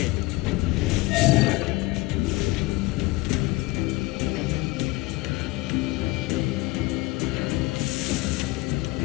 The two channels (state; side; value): quieter; right; 21.8 dB